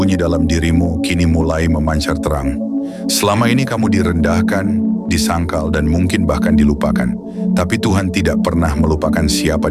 dalam dirimu kini mulai memancar terang. Selama ini kamu direndahkan, disangkal, dan mungkin bahkan dilupakan. Tapi Tuhan tidak pernah melupakan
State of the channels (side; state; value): both; identical; correlation 1.00